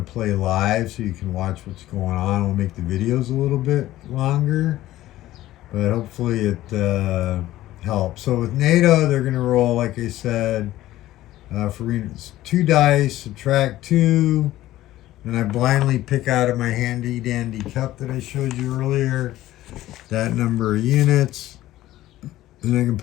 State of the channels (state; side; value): quieter; right; 15.1 dB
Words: play live so you can watch what's going on. I'll make the videos a little bit longer, but hopefully it helps. So with NATO, they're going to roll, like I said, for 2 dice, subtract 2, and I blindly pick out of my handy dandy cup that I showed you earlier that number of units, and I can